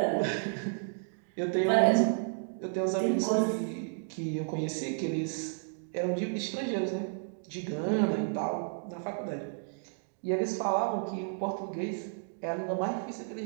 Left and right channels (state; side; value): silent; left; digital silence